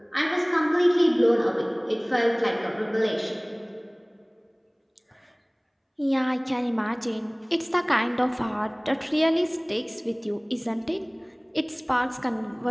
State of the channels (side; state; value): both; identical; correlation 1.00